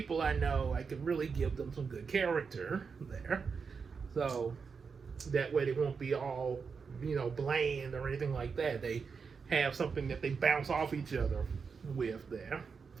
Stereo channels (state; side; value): quieter; left; 5.5 dB